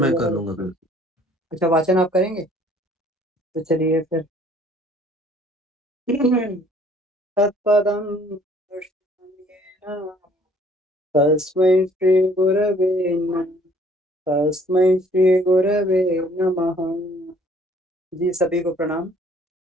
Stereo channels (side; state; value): both; normal; correlation 0.58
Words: कर तो लूंगा फिर। अच्छा, वाचन आप करेंगे? तो चलिए फिर। तत्पदं दर्शनीयेन तस्मै श्रीगुरवे नमः। तस्मै श्रीगुरवे नमः। जी, सभी को प्रणाम।